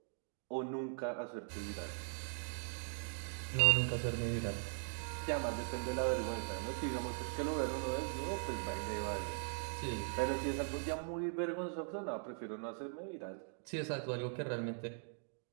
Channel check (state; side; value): silent; left; digital silence